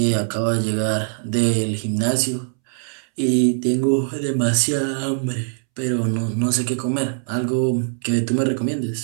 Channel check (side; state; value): left; silent; 65 dB below the other